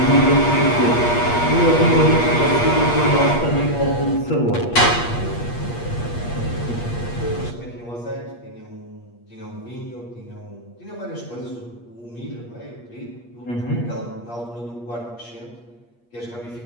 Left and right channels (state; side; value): late; right; 8.5 ms